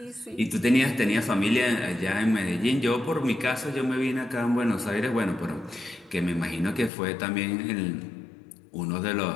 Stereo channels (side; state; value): right; drops out; at 6.9 s